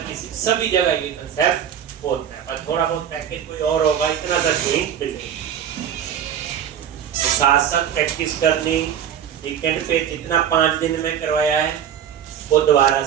किसी सभी जगह ये कंसेप्ट होता है। पर थोड़ा बहुत पैकेज कोई और होगा, इतना सा चेंज मिलेगा। साथ साथ प्रैक्टिस करनी, वीकेंड पे जितना 5 दिन में करवाया है वो दोबारा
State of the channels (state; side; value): quieter; left; 9.2 dB